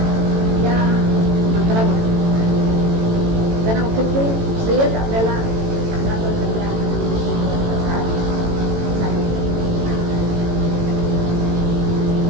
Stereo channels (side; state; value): left; late; 18 ms